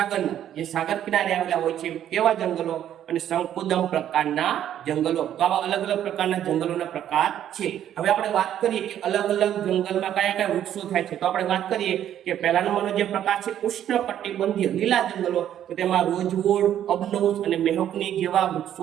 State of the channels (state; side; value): quieter; left; 10.8 dB